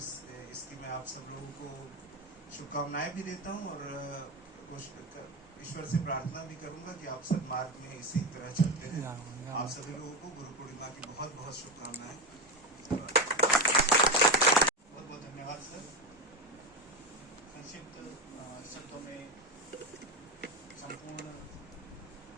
इसकी मैं आप सब लोगों को शुभकामनाएं भी देता हूँ, और ईश्वर से प्रार्थना भी करूंगा कि आप सब मार्ग में इसी तरह चलते रहें। आप सभी लोगों को गुरु पूर्णिमा की बहुत बहुत शुभकामनाएं। बहुत बहुत धन्यवाद सर। संक्षिप्त शब्दों में संपूर्ण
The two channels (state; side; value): normal; both; correlation 0.15